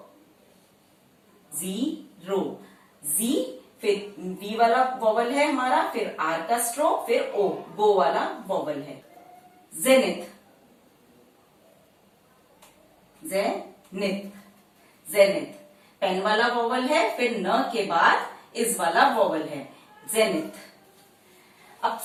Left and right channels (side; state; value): both; identical; correlation 1.00